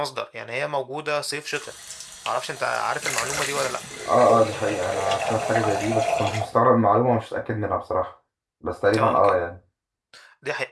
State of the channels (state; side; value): identical; both; correlation 1.00